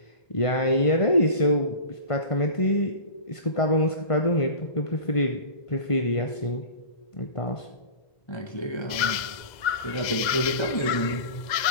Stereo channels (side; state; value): right; late; 2.0 ms